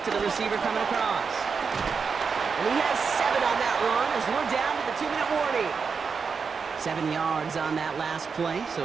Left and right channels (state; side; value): quieter; left; 5.5 dB